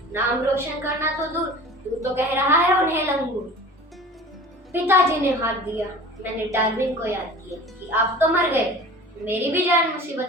नाम रोशन करना तो दूर, तू तो कह रहा है उन्हें लंगूर। पिताजी ने हाथ दिया, मैंने डार्विन को याद किया कि आप तो मर गए, मेरी भी जान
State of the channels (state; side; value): normal; both; correlation 0.41